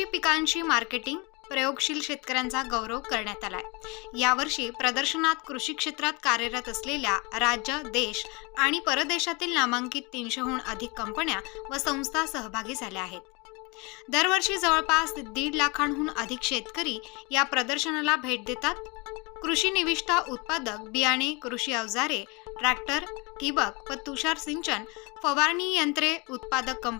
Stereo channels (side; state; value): right; quieter; 28.3 dB